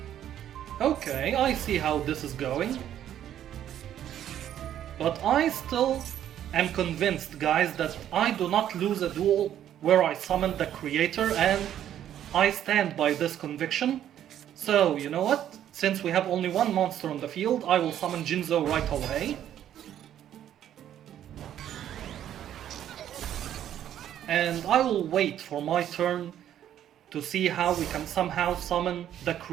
Okay, I see how this is going. But I still am convinced, guys, that I do not lose a duel where I summon the creator, and I stand by this conviction. So, you know what? Since we have only one monster on the field, I will summon Jinzo right away. And I will wait for my turn to see how we can somehow summon the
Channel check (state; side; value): quieter; left; 10.8 dB